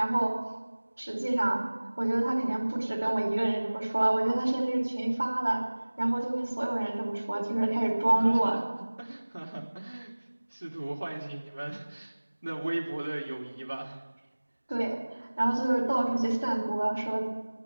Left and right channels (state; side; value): inverted; both; correlation -1.00